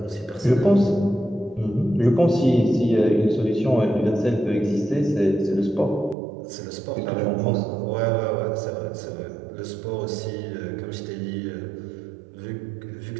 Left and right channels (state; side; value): drops out; left; at 6.2 s